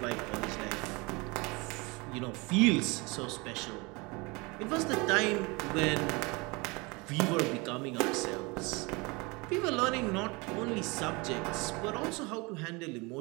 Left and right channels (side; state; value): left; quieter; 26.5 dB